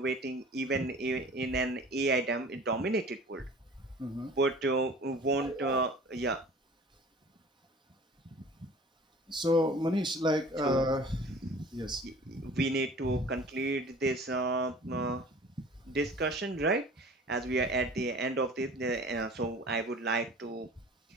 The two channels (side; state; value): both; normal; correlation 0.45